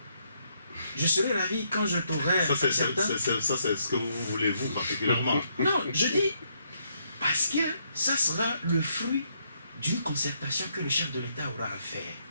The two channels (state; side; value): inverted; both; correlation -0.75